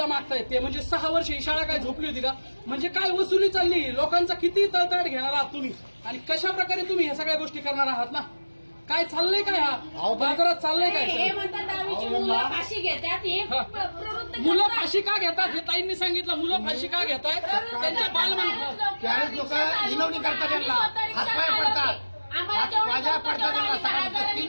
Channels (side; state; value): both; inverted; correlation -1.00